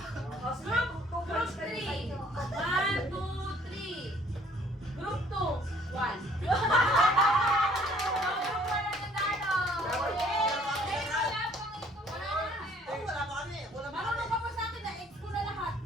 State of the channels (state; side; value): normal; both; correlation 0.59